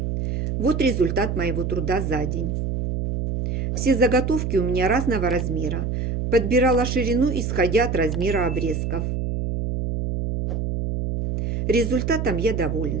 Вот результат моего труда за день. Все заготовки у меня разного размера. Подбирала ширину, исходя от размера обрезков. Результатом я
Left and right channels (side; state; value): right; noise; hum, 1 dB below the sound